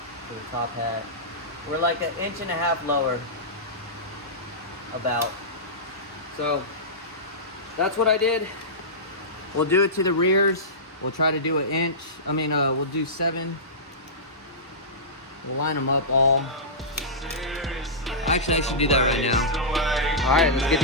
to the top hat. We're like 1.5 inches lower, about. So that's what I did. We'll do it to the rears. We'll try to do 1 inch. We'll do 7. We'll line them up all. Actually, I should do that right now. All right, let's get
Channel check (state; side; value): normal; both; correlation -0.17